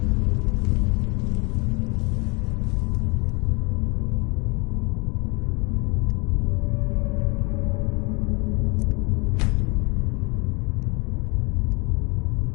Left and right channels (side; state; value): right; quieter; 29.1 dB